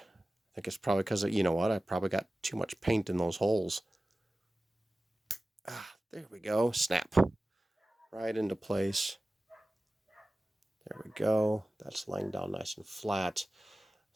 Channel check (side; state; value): both; normal; correlation 0.96